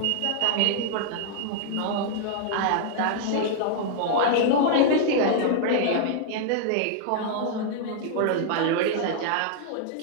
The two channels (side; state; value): both; different; correlation -0.01